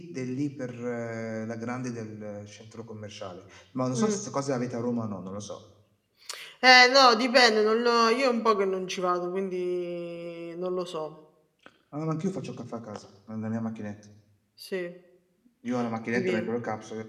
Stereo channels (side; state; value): both; identical; correlation 1.00